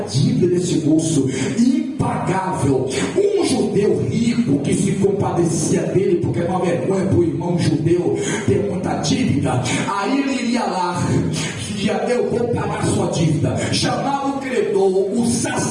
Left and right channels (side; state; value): both; identical; correlation 1.00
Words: dívida desse moço, impagável. Um judeu rico que se compadecia dele, porque é uma vergonha para o irmão judeu ter muita dívida, aí ele iria lá: eu vou pagar sua dívida. Chamava o credor, o